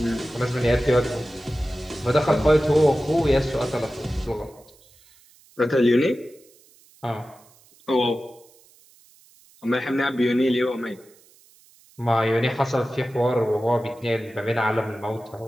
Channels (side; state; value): right; noise; hiss, 28 dB below the sound